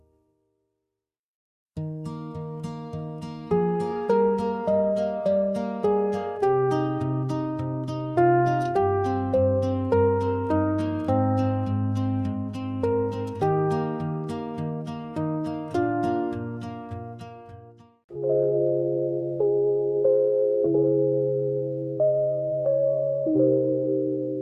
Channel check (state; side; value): identical; both; correlation 1.00